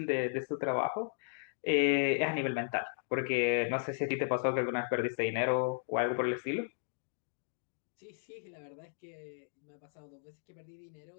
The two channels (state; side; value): silent; right; digital silence